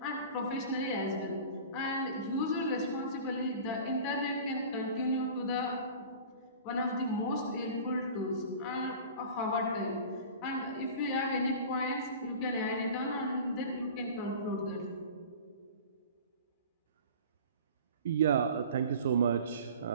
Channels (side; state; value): both; inverted; correlation -0.39